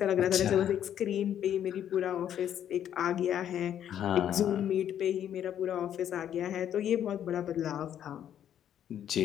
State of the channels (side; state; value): right; quieter; 10.1 dB